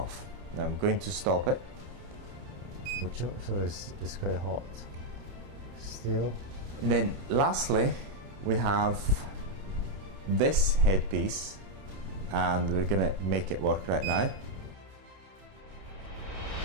Now I'm going to stop it. So it's quite hot still. And then lastly, we have this headpiece, and we're going to make it work right now.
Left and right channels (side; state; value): left; late; 30 ms